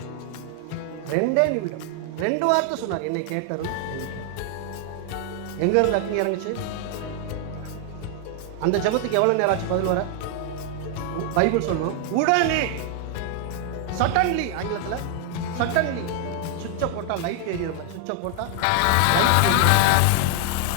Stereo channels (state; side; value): different; both; correlation 0.00